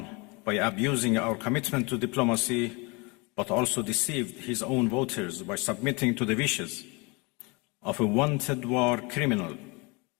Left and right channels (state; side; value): quieter; right; 28.4 dB